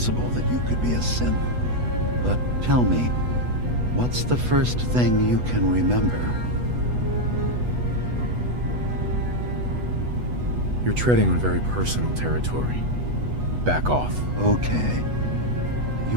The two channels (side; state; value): left; late; 8.1 ms